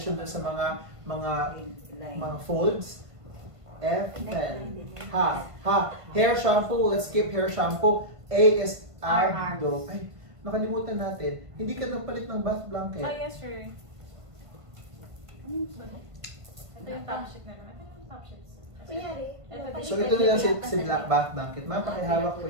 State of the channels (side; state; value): left; late; 1.5 ms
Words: dun sa mga folds. F, N, ha. Hair shampoo, let's skip hair shampoo. A is abdo. Ay, nakalimutan natin. Hindi ka nagpalit ng bath blanket. Yes, sir. Ito yung top sheet na naman. Ito yung top sheet, sir. So ito na lang si black bath blanket. Ma'am, pakihawak po